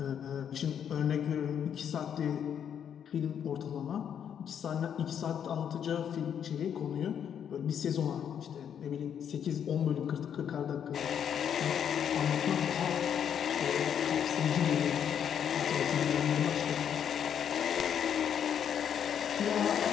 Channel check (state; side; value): quieter; right; 8.6 dB